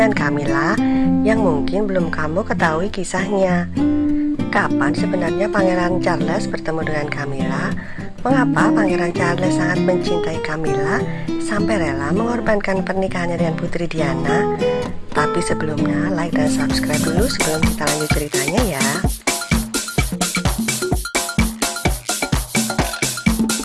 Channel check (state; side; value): identical; both; correlation 1.00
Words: Camilla yang mungkin belum kamu ketahui kisahnya. Kapan sebenarnya Pangeran Charles bertemu dengan Camilla? Mengapa Pangeran Charles sangat mencintai Camilla sampai rela mengorbankan pernikahannya dengan Putri Diana? Tapi sebelumnya, like dan subscribe dulu sebelum kita lanjut ceritanya ya.